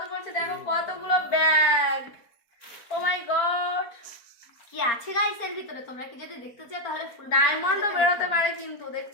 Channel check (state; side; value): late; right; 4.5 ms